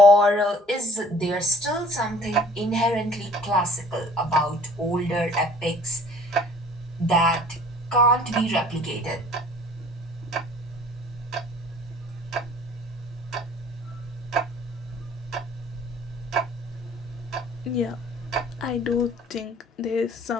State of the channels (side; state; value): both; normal; correlation 0.52